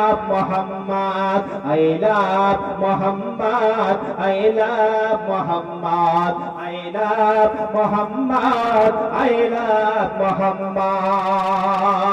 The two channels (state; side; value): identical; both; correlation 1.00